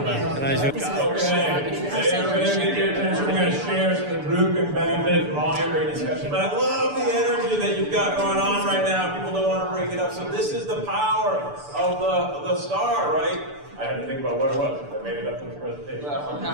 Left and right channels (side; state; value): left; late; 6.9 ms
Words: everybody get your attention. We're going to share so the group can benefit from all your great discussion. But I love the energy that you've got going on right now. People don't want to break it up. So this is the power of the star, right? I had to think about what it was. I made it up in the presentation.